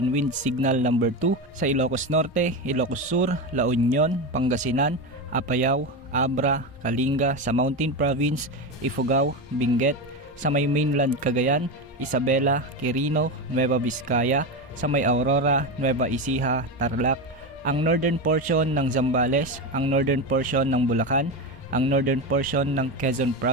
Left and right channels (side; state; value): both; normal; correlation 0.17